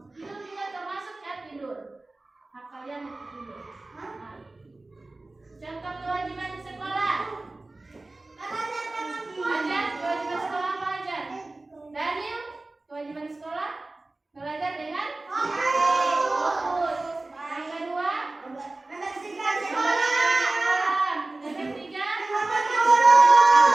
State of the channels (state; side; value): quieter; left; 3.0 dB